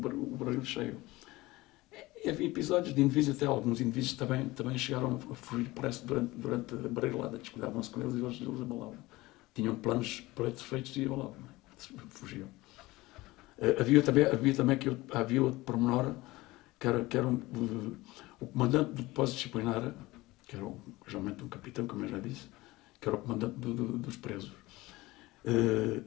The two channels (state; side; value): quieter; right; 19.9 dB